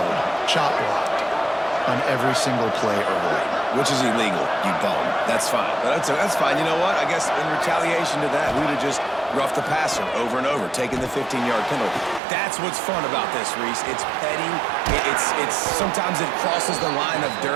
chop blocked on every single play early. Which is illegal, you bum. That's fine. But that's fine. You know what? I guess in retaliation to that, we would have just roughed the passer over and over, taking the 15-yard penalty. That's what's fun about this, Reese. It's petty. It's sometimes it crosses the line of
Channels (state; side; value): drops out; left; at 12.2 s